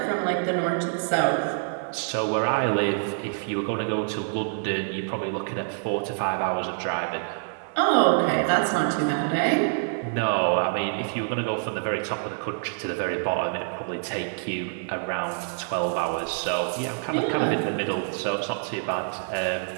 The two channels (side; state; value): left; silent; digital silence